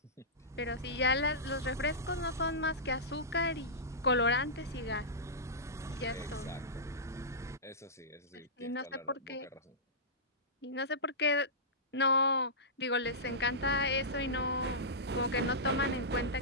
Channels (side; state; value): both; normal; correlation -0.16